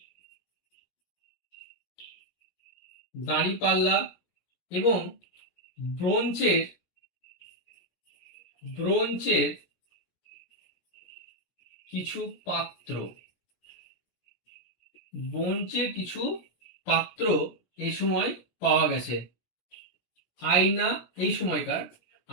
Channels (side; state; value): right; late; 17 ms